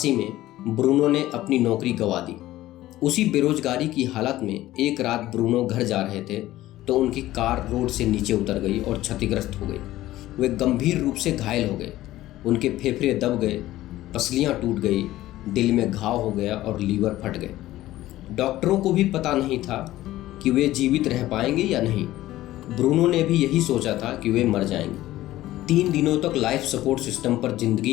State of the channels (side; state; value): right; quieter; 15.5 dB